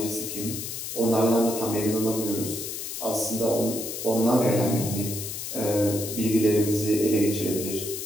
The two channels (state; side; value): noise; left; hiss, 6 dB below the sound